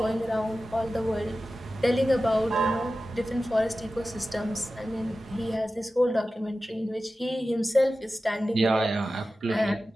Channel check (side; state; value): both; normal; correlation 0.94